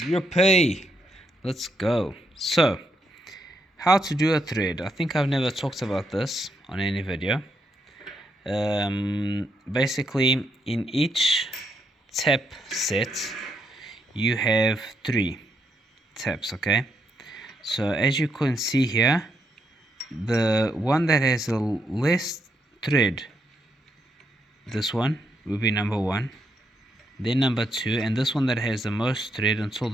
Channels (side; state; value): both; normal; correlation 0.78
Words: Let's go. So, how to do a thread. I think I've never talked about this on any video. Basically, in each tab set, you have 3 tabs, okay? So, as you can see here, the one that has the less thread, this one will be number 1, then number 2, and this one that has the most thread until